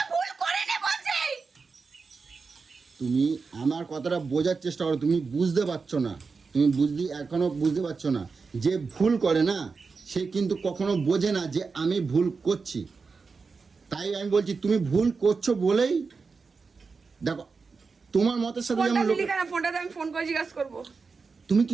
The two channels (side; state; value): left; quieter; 4.7 dB